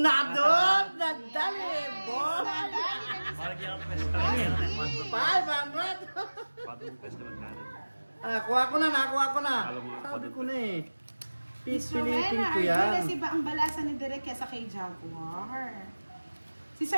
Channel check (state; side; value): inverted; both; correlation -1.00